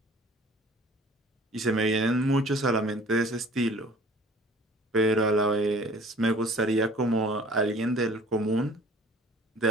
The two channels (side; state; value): both; normal; correlation 0.50